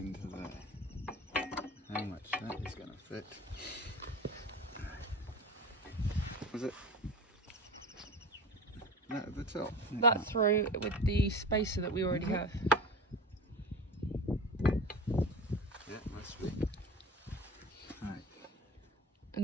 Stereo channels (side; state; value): both; normal; correlation 0.31